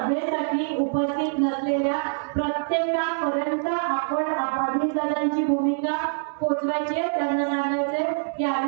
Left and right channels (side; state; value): left; silent; digital silence